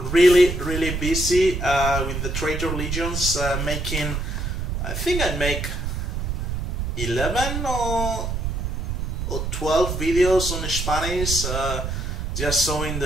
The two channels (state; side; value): noise; right; rumble, 2 dB below the sound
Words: really busy with the Traitor Legions, making. I think I make 11 or 12 videos on Spanish, just showing